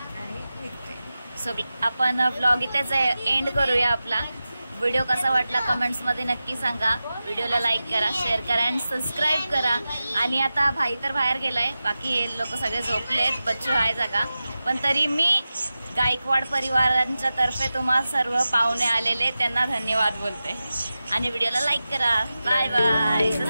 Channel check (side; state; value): both; inverted; correlation -0.94